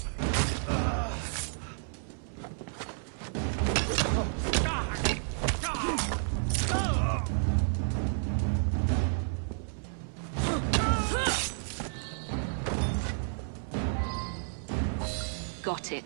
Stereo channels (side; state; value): left; silent; 57 dB below the other